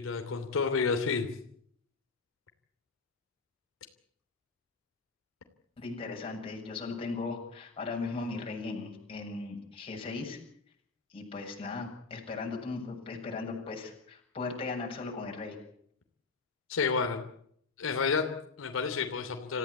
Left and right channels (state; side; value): quieter; right; 4.4 dB